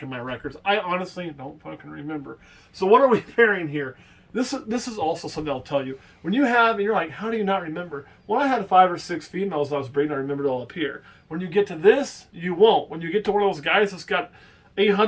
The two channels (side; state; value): both; identical; correlation 1.00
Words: in my records. I honestly don't fucking remember. So what are we pairing here? This is also something I'll tell you. When you have, and you're like, how do you not remember? Well, I had 5 or 6 females I was breeding. I remembered all up here. When you get to this, you won't. When you get to one of those guys that's got